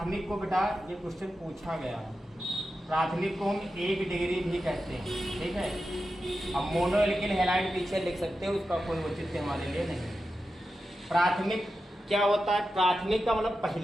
को बेटा ये क्वेश्चन पूछा गया है। प्राथमिक को हम 1 डिग्री भी कहते हैं, ठीक है। अब मोनो एल्किल हैलाइड पीछे लिख सकते हो, उसका कोई औचित्य हमारे लिए नहीं। प्राथमिक क्या होता है? प्राथमिक का मतलब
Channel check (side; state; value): both; normal; correlation 0.90